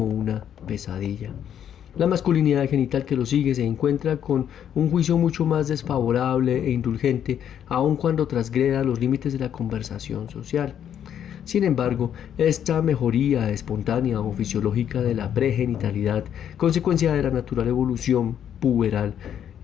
una pesadilla. La masculinidad genital que lo sigue se encuentra con un juicio mucho más desfavorable e indulgente, aun cuando transgreda los límites de la conversación social. Sin embargo, esta mejoría espontánea o fisiológica de la pregenitalidad, consecuencia de la natural evolución puberal,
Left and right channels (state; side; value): quieter; right; 9.5 dB